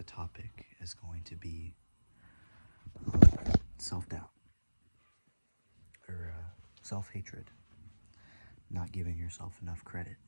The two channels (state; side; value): inverted; both; correlation -1.00